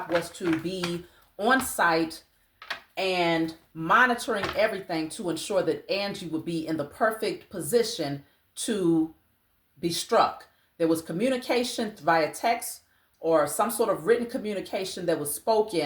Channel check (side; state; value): both; identical; correlation 1.00